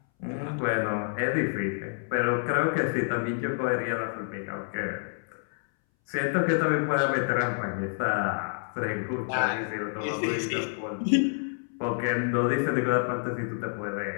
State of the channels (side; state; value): right; silent; 59 dB below the other